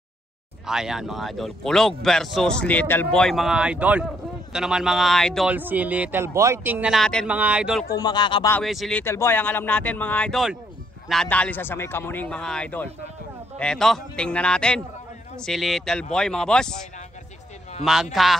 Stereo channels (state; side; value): normal; both; correlation 0.71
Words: Ayan mga idol, Kulog versus Little Boy mga idol. Ito naman mga idol, si Little Boy. Tingnan natin mga idol kung makakabawi si Little Boy. Ang alam natin mga idol, nadali sa may Kamuning mga idol. Eto, tingnan natin si Little Boy mga boss.